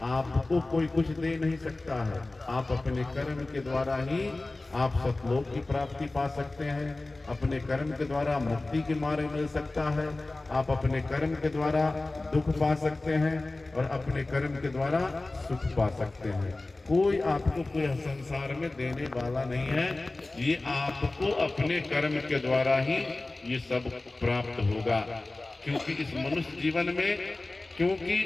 आपको कोई कुछ दे नहीं सकता है। आप अपने कर्म के द्वारा ही आप सतलोक की प्राप्ति पा सकते हैं, अपने कर्म के द्वारा मुक्ति के मार्ग मिल सकता है, आप अपने कर्म के द्वारा दुख पा सकते हैं और अपने कर्म के द्वारा सुख पा सकते हैं। कोई आपको कोई संसार में देने वाला नहीं है, ये आपको अपने कर्म के द्वारा ही ये सब प्राप्त होगा। क्योंकि इस मनुष्य जीवन में, क्योंकि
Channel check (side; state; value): right; quieter; 3.0 dB